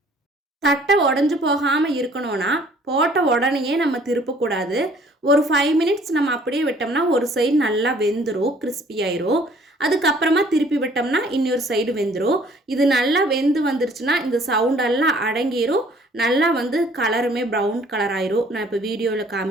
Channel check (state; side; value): normal; both; correlation 0.57